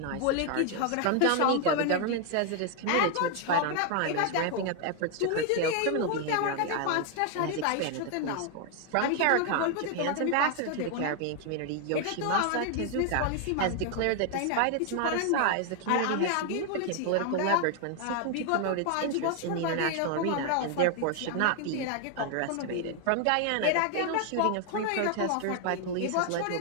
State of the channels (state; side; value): different; both; correlation 0.00